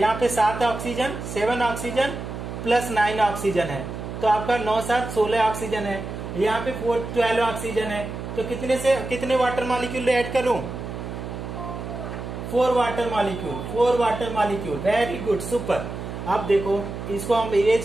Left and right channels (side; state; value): right; noise; hum, 8 dB below the sound